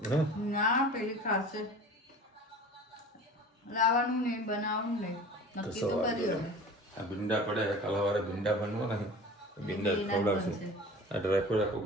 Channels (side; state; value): both; normal; correlation 0.40